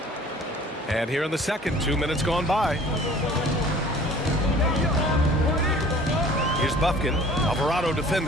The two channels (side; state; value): both; normal; correlation 0.49